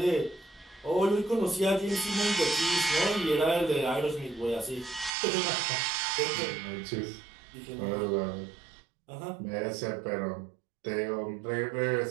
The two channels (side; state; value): left; drops out; at 5.1 s